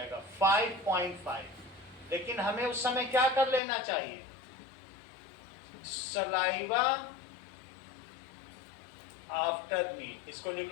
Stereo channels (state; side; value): drops out; right; at 3.6 s